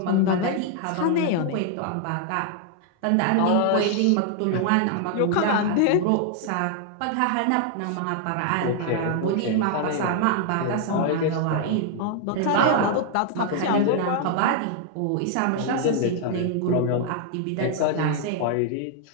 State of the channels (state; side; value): different; both; correlation 0.00